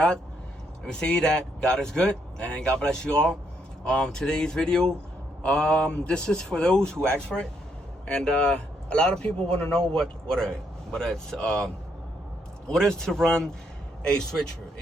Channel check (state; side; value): normal; both; correlation 0.74